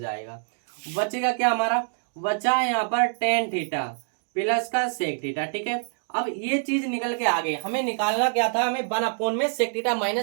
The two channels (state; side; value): silent; left; digital silence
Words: बचेगा क्या हमारा, बचा यहाँ पर टेन थीटा प्लस का सेक थीटा। ठीक है, अब ये चीज निकल के आ गई, हमें निकालना क्या था, हमें 1 अपॉन में सेक थीटा